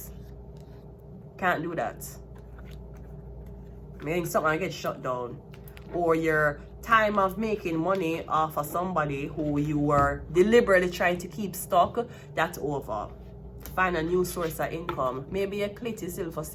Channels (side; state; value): both; identical; correlation 1.00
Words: Can't do that. Meaning something gets shut down. Or your time of making money off of somebody who you were deliberately trying to keep stuck, that's over. Find a new source of income. Maybe a clit is still for